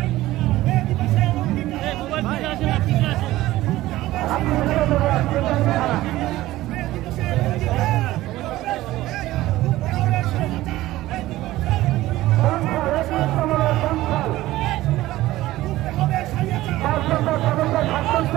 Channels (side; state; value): left; quieter; 16.5 dB